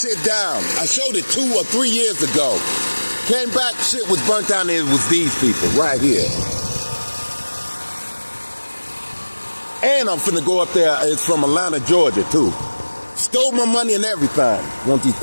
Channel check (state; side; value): inverted; both; correlation -1.00